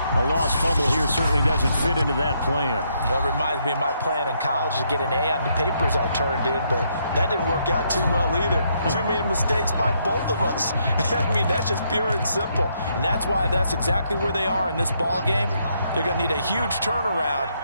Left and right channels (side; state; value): both; inverted; correlation -0.74